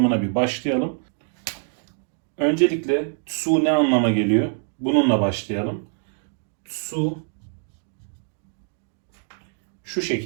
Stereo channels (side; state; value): left; silent; 57 dB below the other